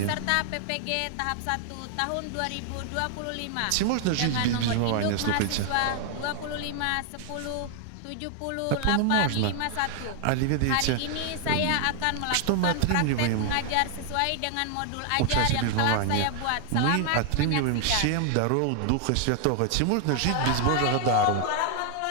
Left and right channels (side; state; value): both; different; correlation 0.00